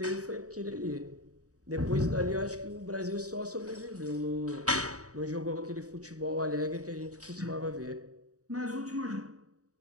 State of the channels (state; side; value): late; left; 0.66 ms